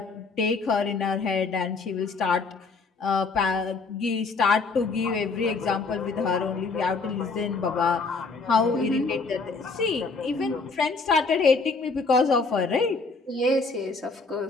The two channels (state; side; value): quieter; right; 4.1 dB